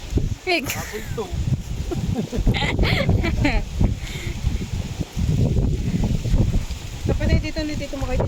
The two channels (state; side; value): identical; both; correlation 1.00